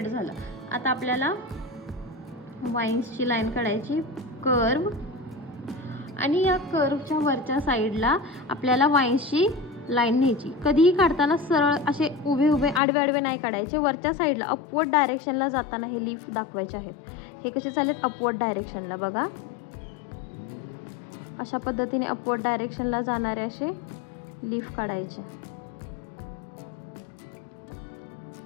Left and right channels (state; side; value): drops out; right; at 12.8 s